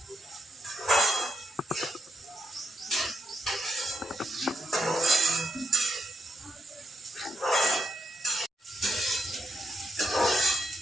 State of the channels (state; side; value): normal; both; correlation 0.81